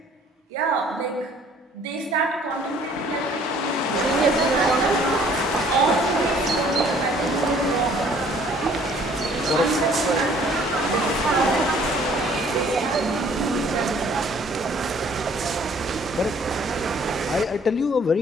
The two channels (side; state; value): both; normal; correlation 0.57